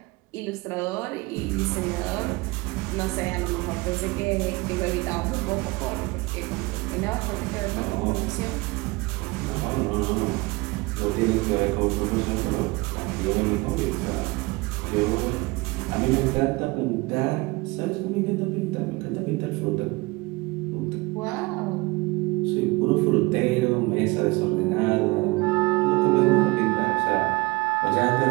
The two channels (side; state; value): left; quieter; 24.0 dB